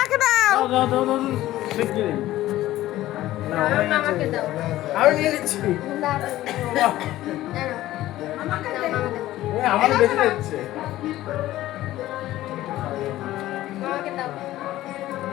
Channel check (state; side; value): quieter; right; 15.2 dB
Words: দাও। আমি নিয়ে নিচ্ছি আমার বেশি যাচ্ছে